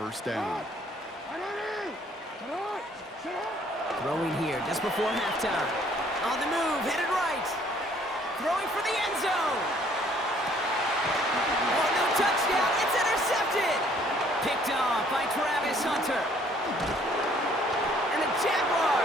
down. Throwing here just before halftime. On the move, headed right. Throwing for the end zone. Oh, no touchdown. It's intercepted. Picked off by Travis Hunter. And the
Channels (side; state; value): both; normal; correlation 0.61